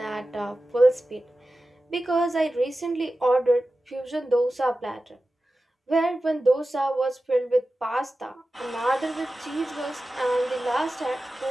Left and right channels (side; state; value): both; normal; correlation 0.94